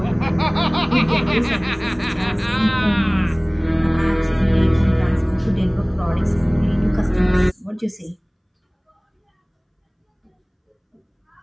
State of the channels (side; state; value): both; identical; correlation 1.00